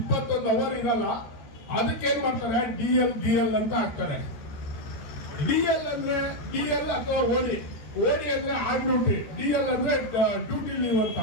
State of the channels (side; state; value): right; late; 13 ms